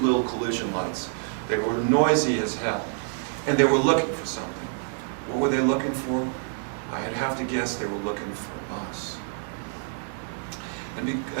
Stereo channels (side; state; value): left; silent; 60 dB below the other